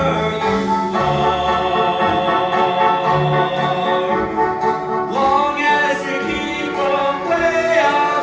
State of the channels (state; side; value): identical; both; correlation 1.00